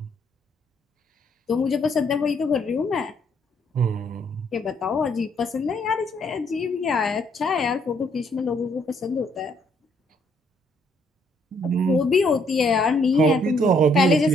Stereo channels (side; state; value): both; normal; correlation 0.69